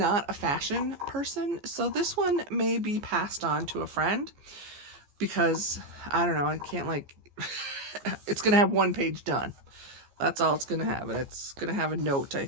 a fashion person, so this one may be passed on to a friend because, I don't know, I can't like, it's going to have 1 page done. That's all it's going to have, and it's going to have a note, I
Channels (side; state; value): left; late; 14 ms